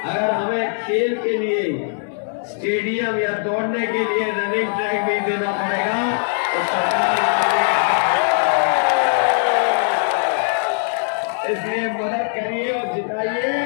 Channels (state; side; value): silent; right; digital silence